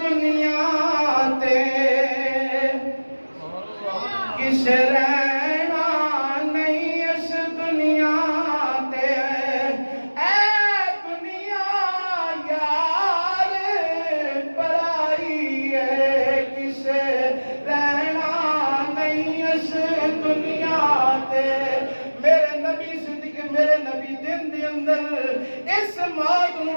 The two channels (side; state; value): both; inverted; correlation -1.00